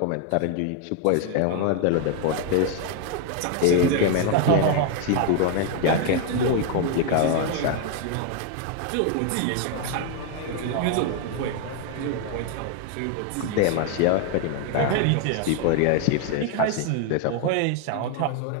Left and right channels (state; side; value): different; both; correlation 0.00